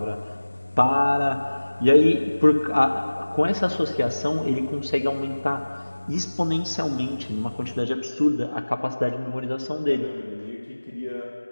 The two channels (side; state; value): both; inverted; correlation -1.00